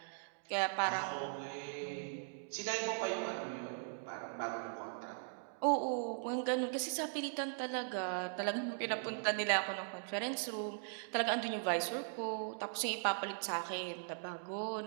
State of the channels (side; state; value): left; silent; digital silence